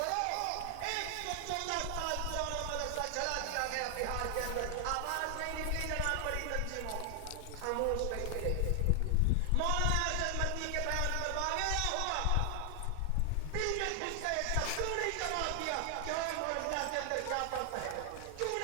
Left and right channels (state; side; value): different; both; correlation 0.00